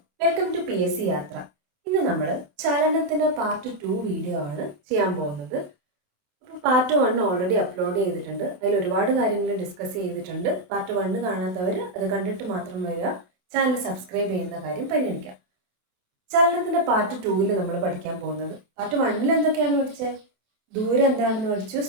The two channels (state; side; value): late; left; 27 ms